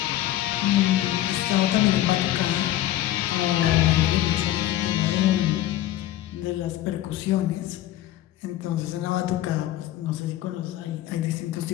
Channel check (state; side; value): quieter; right; 13.7 dB